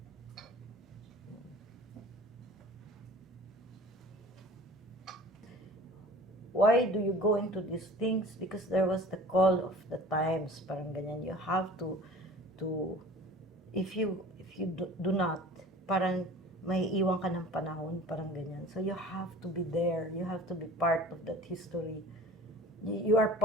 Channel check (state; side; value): normal; both; correlation 0.43